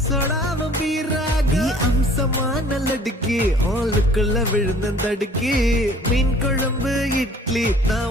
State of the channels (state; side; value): normal; both; correlation 0.53